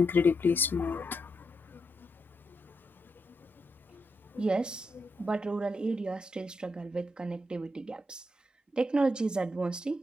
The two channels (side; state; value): both; normal; correlation 0.82